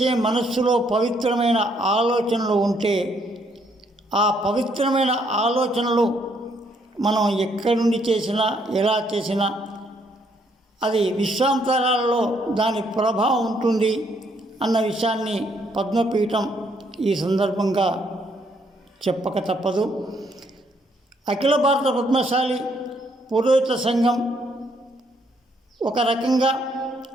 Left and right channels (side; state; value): both; normal; correlation 0.70